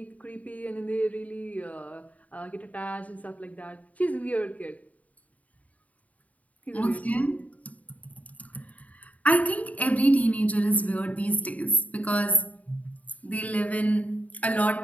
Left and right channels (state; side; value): late; right; 0.071 ms